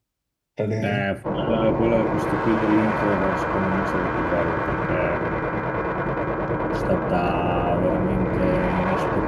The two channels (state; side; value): identical; both; correlation 1.00